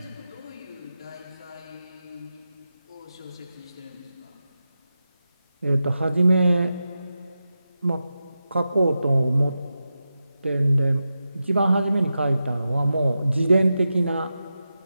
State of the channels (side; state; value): both; inverted; correlation -0.91